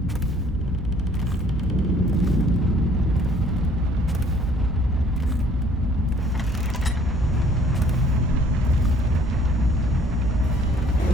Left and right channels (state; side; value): noise; right; hum, 7 dB below the sound